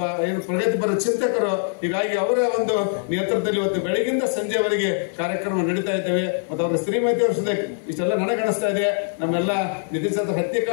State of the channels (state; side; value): silent; right; digital silence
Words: ಪ್ರಗತಿಪರ ಚಿಂತಕರು. ಹೀಗಾಗಿ ಅವರ ಒಂದು ನೇತೃತ್ವದಲ್ಲಿ ಇವತ್ತು ಬೆಳಗಿಂದ ಸಂಜೆವರೆಗೆ ಕಾರ್ಯಕ್ರಮ ನಡೀತಾ ಇದ್ದೇವೆ. ಮತ್ತು ಅವರ ಶ್ರೀಮತಿಯವ್ರ ಸದ್ಯಕ್ಕೆ ಇಷ್ಟೆಲ್ಲ ನನಗಣಿಸ್ತಾ ಇದೆ. ನಮ್ಮೆಲ್ಲ ನಿತಿನ್ ಚಂದ್ರ